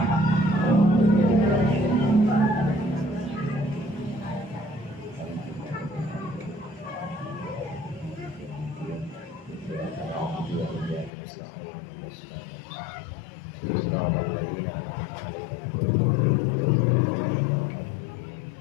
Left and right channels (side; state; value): right; drops out; at 11.1 s